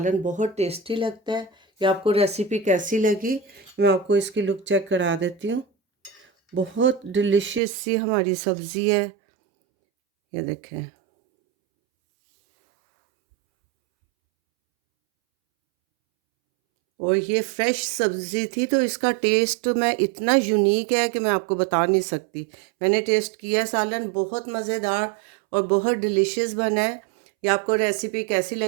बहुत टेस्टी लगता है। ये आपको रेसिपी कैसी लगी, मैं आपको इसकी लुक चेक करा देती हूँ। बहुत डिलीशियस सी हमारी सब्ज़ी है, ये देखें। और ये फ्रेश सब्ज़ी थी तो इसका टेस्ट मैं इतना यूनिक है कि मैं आपको बता नहीं सकती। मैंने टेस्ट किया सालन, बहुत मज़ेदार और बहुत डिलीशियस बना है। ये आपको रेसिपी कैसी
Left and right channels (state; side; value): drops out; left; at 7.6 s